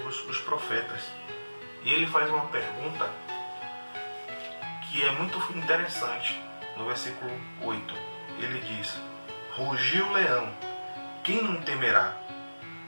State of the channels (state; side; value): inverted; both; correlation -1.00